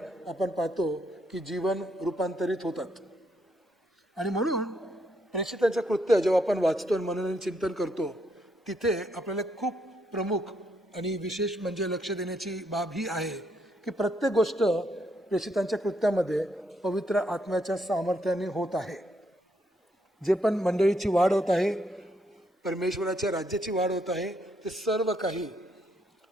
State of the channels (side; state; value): both; normal; correlation 0.75